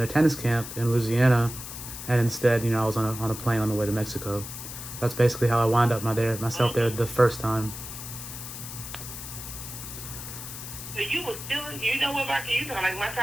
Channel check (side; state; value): left; noise; hiss, 10 dB below the sound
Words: tennis camp in Louisiana, and instead, I was on a plane on the way to Mexico. That's basically how I wound up myself there the first time. So you were still, what, Marky, you sound like my